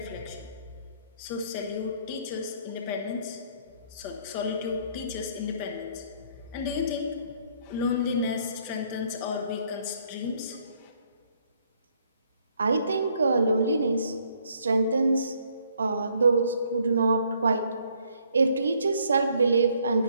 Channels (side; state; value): both; inverted; correlation -0.66